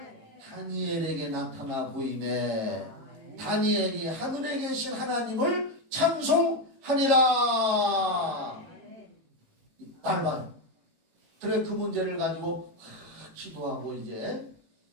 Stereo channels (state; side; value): late; left; 18 ms